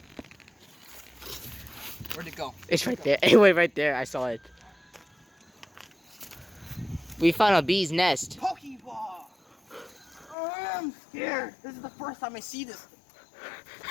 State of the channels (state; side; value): drops out; right; at 10.4 s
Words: Where'd it go? It's right there. Anyway, right there. I saw it. We found a bee's nest. Pokeball! Oh, I'm scared. This is the first time I see this.